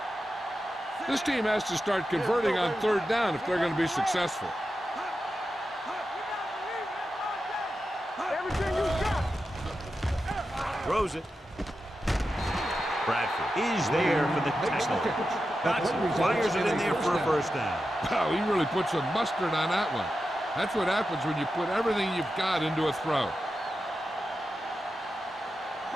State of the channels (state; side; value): normal; both; correlation 0.90